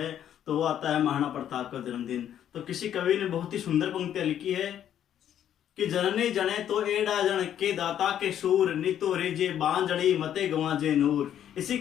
तो वो आता है महाराणा प्रताप का जन्मदिन। तो किसी कवि ने बहुत ही सुंदर पंक्तियां लिखी है कि जननी जने तो एडा जन के दाता के सूर नितो रेजे बांजड़ी मते गवाजे नूर। इसी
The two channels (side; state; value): right; quieter; 10.3 dB